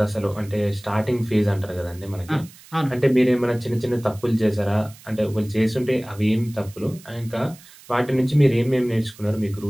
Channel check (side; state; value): right; noise; hiss, 22 dB below the sound